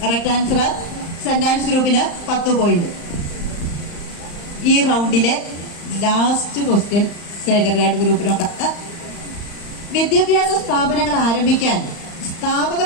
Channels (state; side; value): late; right; 35 ms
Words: Correct answer. സെന്റ് ആൻസ് ഗ്രൂപ്പിന് 10 പോയിന്റ്. ഈ റൗണ്ടിലെ ലാസ്റ്റ് ക്വസ്റ്റ്യൻ സേക്രഡ് ഗ്രൂപ്പിനോടാണ്. വിദ്യാഭ്യാസ സ്ഥാപനങ്ങൾ ആരംഭിക്കാൻ സ്ഥാപക